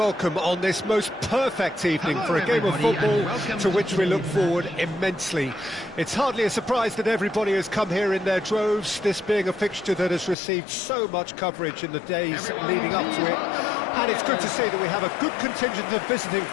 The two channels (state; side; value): drops out; right; at 10.4 s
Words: on this most perfect evening for a game of football to which we look forward immensely. It's hardly a surprise that everybody has come here in their droves, this being a fixture that has received so much coverage in the days leading up to it. And it's good to see that we have a good contingent of visiting